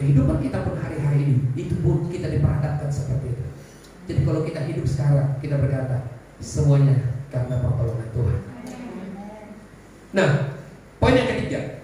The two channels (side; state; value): both; identical; correlation 1.00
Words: kita pun hari-hari ini, itu pun kita diperhadapkan seperti itu. Jadi kalau kita hidup sekarang, kita berkata semuanya karena pertolongan Tuhan. Nah, poin yang ketiga.